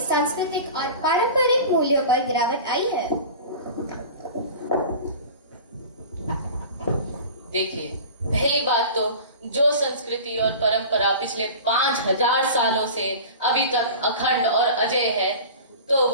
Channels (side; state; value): both; inverted; correlation -0.36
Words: और पारंपरिक मूल्यों पर गिरावट आई है? देखिए, पहली बात तो जो संस्कृति और परंपरा पिछले 5000 सालों से अभी तक अखंड और अजय है, तो